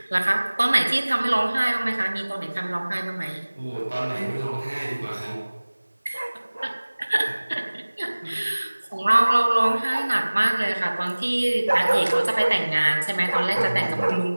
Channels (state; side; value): inverted; both; correlation -1.00